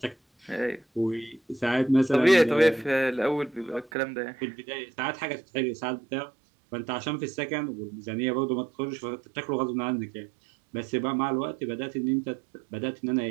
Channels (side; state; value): left; drops out; at 3.9 s